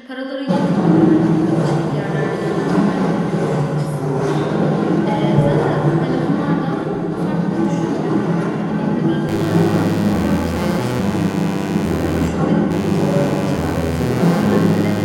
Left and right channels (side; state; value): both; identical; correlation 1.00